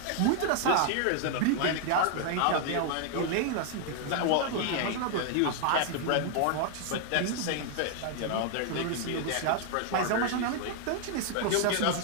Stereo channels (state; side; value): different; both; correlation 0.00